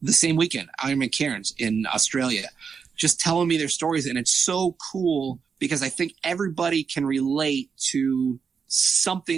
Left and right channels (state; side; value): quieter; left; 6.0 dB